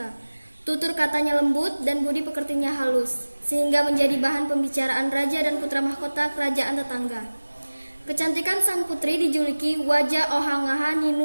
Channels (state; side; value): inverted; both; correlation -1.00